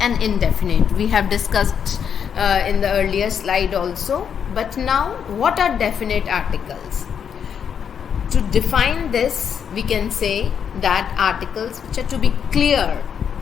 indefinite. We have discussed in the earlier slide also. But now, what are definite articles? To define this, we can say that articles which are to be clear,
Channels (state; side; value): quieter; right; 7.7 dB